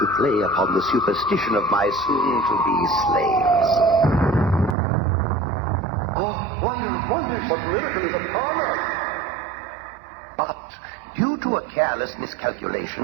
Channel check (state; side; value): drops out; left; at 4.8 s